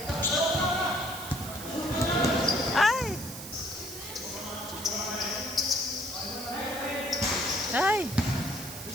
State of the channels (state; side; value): noise; right; hiss, 11 dB below the sound